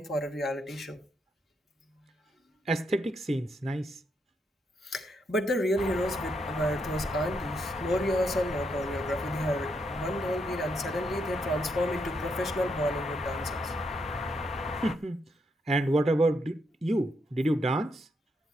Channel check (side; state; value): both; normal; correlation 0.78